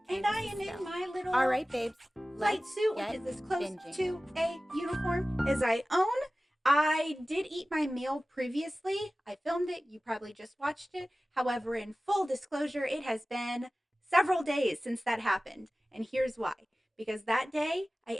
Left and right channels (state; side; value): normal; both; correlation 0.97